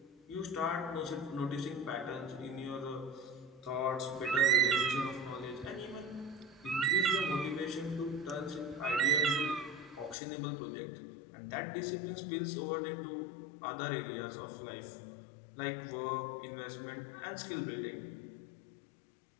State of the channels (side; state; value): right; drops out; at 10.2 s